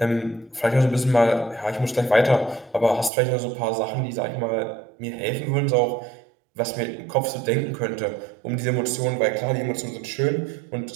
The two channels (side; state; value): left; drops out; at 3.1 s